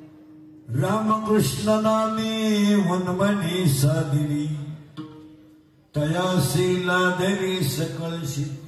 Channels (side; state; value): both; identical; correlation 1.00